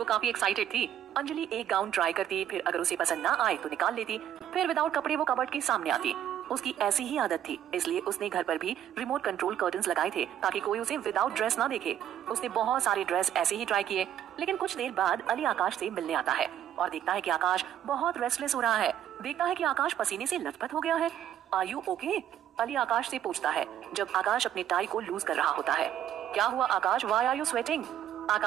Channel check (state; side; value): quieter; left; 10.6 dB